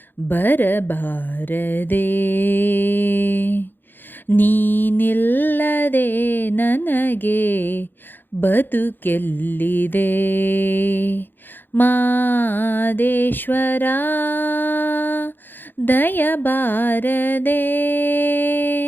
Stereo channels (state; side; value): late; right; 0.094 ms